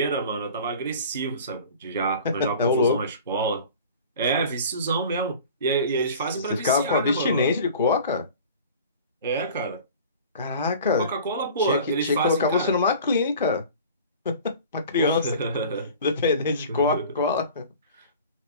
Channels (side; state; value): both; inverted; correlation -0.42